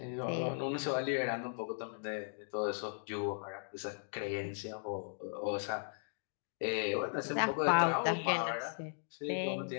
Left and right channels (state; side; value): silent; right; digital silence